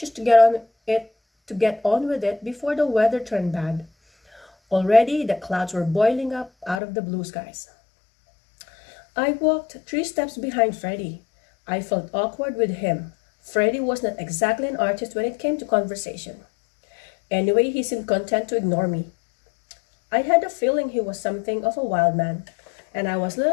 to get on with it before the weather turned bad. Already the clouds were boiling up out of the blue skies. I walked 3 steps behind Freddie. I felt awkward with him. Freddie was not exactly an artist when it came to conversation. Anyway, he seemed content to ignore me. I had a feeling he was something of a wild man, and I was a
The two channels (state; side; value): drops out; right; at 6.8 s